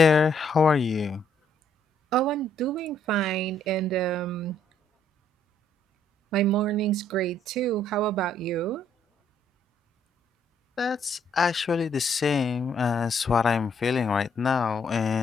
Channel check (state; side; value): normal; both; correlation 0.68